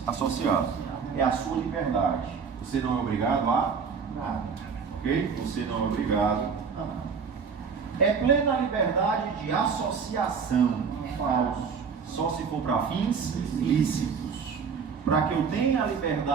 associado. É a sua liberdade. Você não é obrigado a nada. Ok? Você não é obrigado a nada. É plena liberdade de associação. Falso. Só se for para fins lícitos. Para que eu tenha a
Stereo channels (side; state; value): left; quieter; 6.0 dB